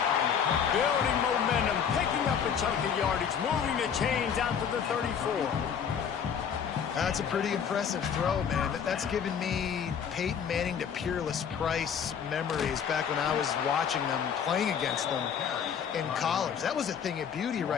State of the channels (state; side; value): quieter; right; 7.6 dB